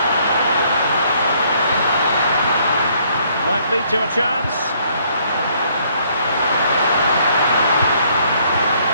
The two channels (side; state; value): both; inverted; correlation -0.66